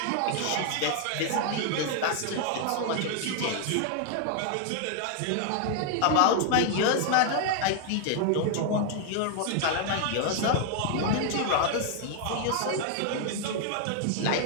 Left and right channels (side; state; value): both; different; correlation 0.00